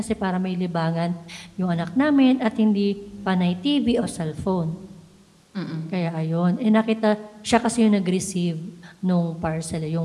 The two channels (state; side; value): identical; both; correlation 1.00